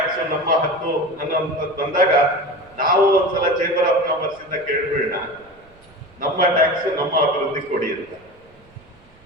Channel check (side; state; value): right; noise; rumble, 28 dB below the sound